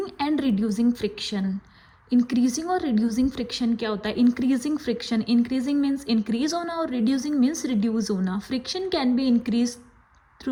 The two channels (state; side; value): identical; both; correlation 1.00